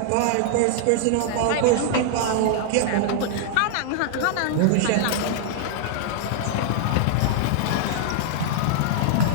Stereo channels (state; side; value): different; both; correlation -0.01